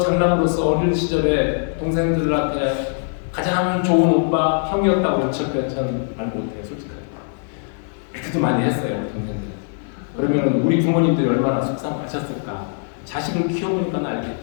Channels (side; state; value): right; silent; 65 dB below the other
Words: 장남으로서 어린 시절에 동생들한테 가장 좋은 오빠 형이었다고 저는 말 못해요. 솔직하게 그때도 많이 했어요. 우리 동생들. 그러면 우리 부모님들이 얼마나 속상하셨을까. 자식을 키워보니까